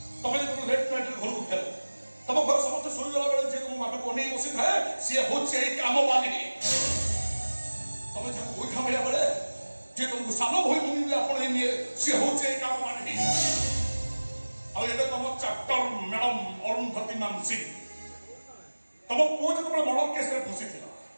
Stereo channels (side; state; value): both; inverted; correlation -1.00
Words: ତମେ ଯେତେବେଳେ ଲେଟ୍ ନାଇଟ୍ରେ ଘରକୁ ଫେର ତମ ଘର ସମସ୍ତେ ଶୋଇଗଲା ବେଳେ ଯେ ତମ ବାଟକୁ ଅନେଇ ବସିଥାଏ ସିଏ ହଉଛି ଏଇ କାମବାଲି ତମେ ଯାହାକୁ ଗୋଇଠା ମାରିବା ବେଳେ ଯେ ତମକୁ ସାନ ଭଳି ଭୂମି ଆପଣେଇ ନିଏ ସିଏ ହଉଛି ଏଇ କାମବାଲି ଆଉ ଏବେ ତମ ଚାପ୍ଟର ମ୍ୟାଡମ ଅରୁନ୍ଧତୀ ମାନସିଂ ତମ ପୁଅ ଯେତେବେଳେ ମର୍ଡର କେସରେ ଫସିଥିଲା